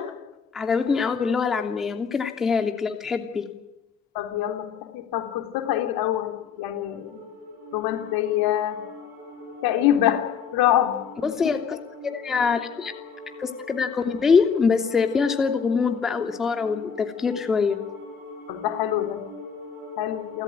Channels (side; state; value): right; quieter; 6.8 dB